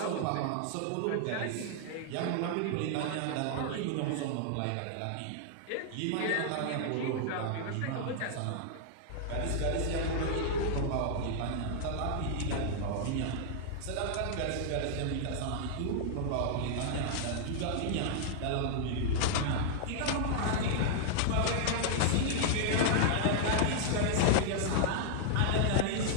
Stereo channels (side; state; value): both; different; correlation -0.01